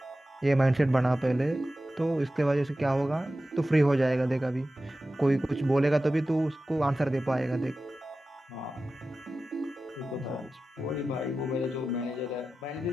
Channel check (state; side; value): normal; both; correlation 0.94